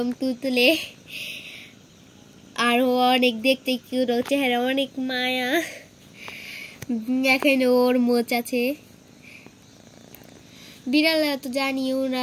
তুলতুলে, আর ও অনেক দেখতে কিউট, ওর চেহারা অনেক মায়া। দেখেন ওর মোচ আছে। বিড়ালরা তো জানি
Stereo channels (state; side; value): identical; both; correlation 1.00